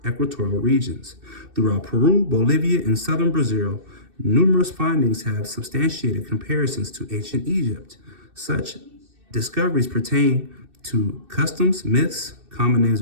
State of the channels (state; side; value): late; left; 2.6 ms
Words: equatorial regions. Throughout Peru, Bolivia, and southern Brazil, numerous findings have substantiated comparisons to ancient Egypt. Such discoveries pertain to customs, myths, common names